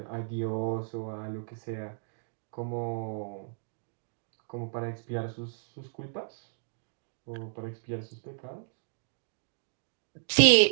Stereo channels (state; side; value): silent; left; digital silence